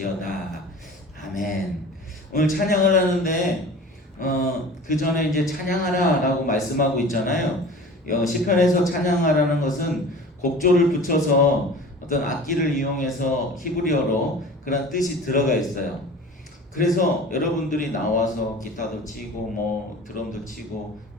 아멘. 오늘 찬양을 하는데 그 전에 이제 찬양하라라고 말씀하고 있잖아요. 시편에서 찬양하라는 것은 곡조를 붙여서 어떤 악기를 이용해서 히브리어로 그런 뜻이 들어가 있어요. 그래서 여러분들이 나와서 기타도 치고 뭐 드럼도 치고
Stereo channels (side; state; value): both; normal; correlation 0.40